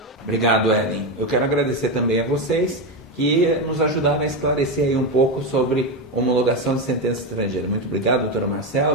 Obrigado, Ellen. Eu quero agradecer também a vocês que nos ajudaram a esclarecer aí um pouco sobre homologação de sentença estrangeira. Muito obrigado, doutora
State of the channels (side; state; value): both; normal; correlation 0.12